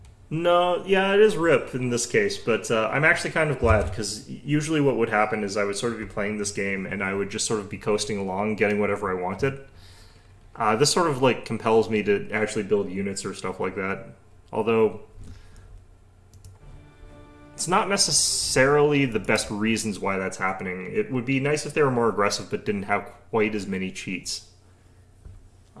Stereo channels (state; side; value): identical; both; correlation 1.00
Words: No, yeah, it is RIP in this case, but I'm actually kind of glad, because usually what would happen is I would sort of be playing this game, and I would just sort of be coasting along, getting whatever I wanted. This sort of, like, compels me to actually build units or stuff like that. Although it's not necessarily the best reasons why that's happening. It would be nice if they were more aggressive but didn't have quite as many cheats.